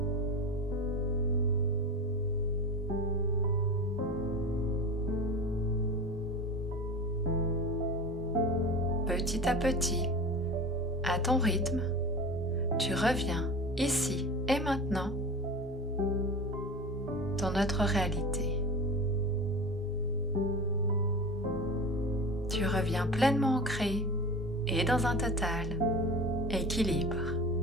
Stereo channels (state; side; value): normal; both; correlation 0.31